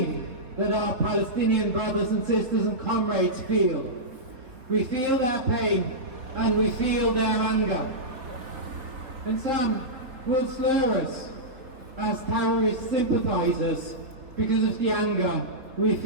that our Palestinian brothers and sisters and comrades feel. We feel their pain and we feel their anger. And some will slur us as terrorist sympathisers because of the anger we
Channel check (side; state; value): left; late; 3.9 ms